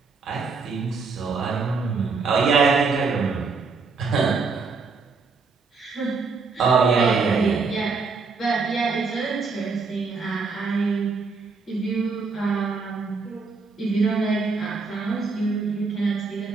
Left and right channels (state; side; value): quieter; left; 4.5 dB